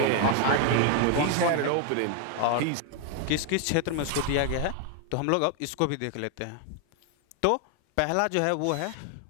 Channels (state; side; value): different; both; correlation 0.00